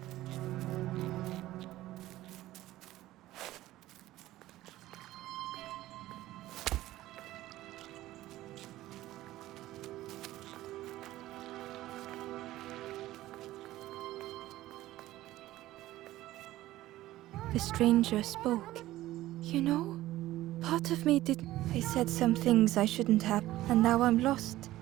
The stranger spoke. You know, part of me didn't. I said some things I shouldn't have, and now I'm lost.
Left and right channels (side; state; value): left; quieter; 15.7 dB